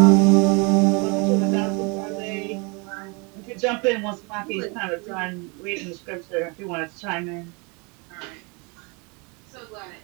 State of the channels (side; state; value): left; quieter; 30.7 dB